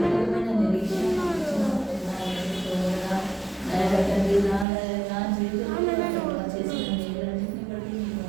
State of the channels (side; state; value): left; drops out; at 4.7 s